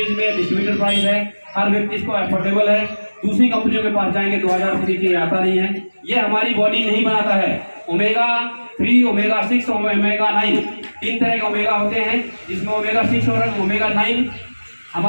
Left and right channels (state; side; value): inverted; both; correlation -1.00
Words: में डिस्ट्रीब्यूटर प्राइस है। हर व्यक्ति इसको अफोर्डेबल है। दूसरी कंपनियों के पास जाएंगे 2000 रुपये की आता नहीं है। ये हमारी बॉडी नहीं बनाता है। ओमेगा 3, ओमेगा 6, ओमेगा 9 3 तरह के ओमेगा होते हैं, जिसमें ओमेगा 6 और ओमेगा 9